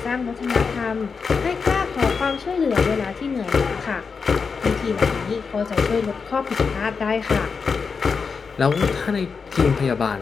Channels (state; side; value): quieter; right; 5.3 dB